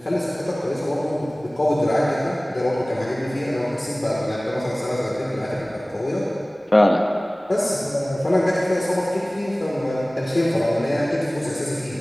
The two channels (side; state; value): both; normal; correlation 0.98